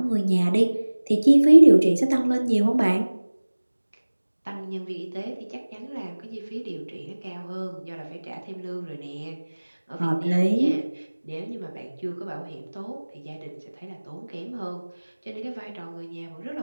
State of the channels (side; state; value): both; inverted; correlation -1.00